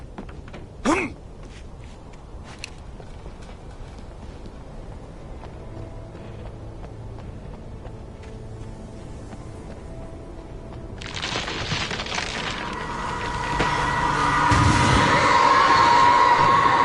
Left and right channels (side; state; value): both; identical; correlation 1.00